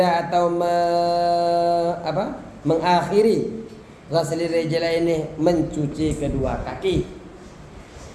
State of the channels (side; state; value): both; identical; correlation 1.00